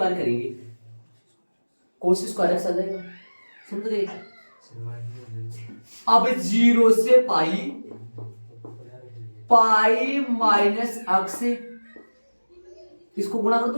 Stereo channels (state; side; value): inverted; both; correlation -1.00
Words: करेंगे, कोस स्क्वायर एक्स आ जाएगा, समझ गए। अब 0 से पाई, पाई माइनस एक्स, इसको गुणा कर